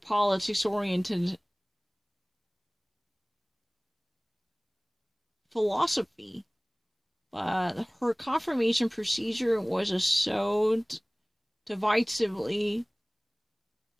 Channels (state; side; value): identical; both; correlation 1.00